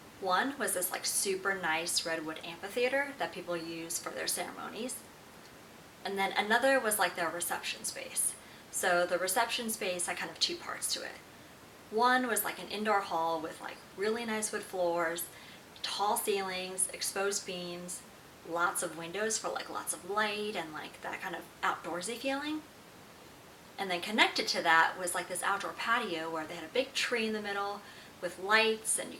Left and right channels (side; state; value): both; identical; correlation 1.00